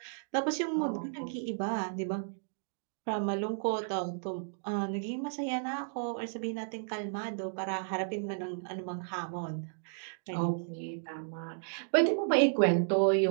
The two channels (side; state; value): left; silent; digital silence